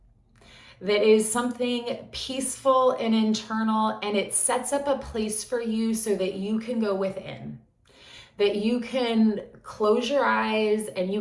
that is something peaceful and internal, and it sets up a place for you so that you can go within, that you can close your eyes and you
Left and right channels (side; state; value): both; identical; correlation 1.00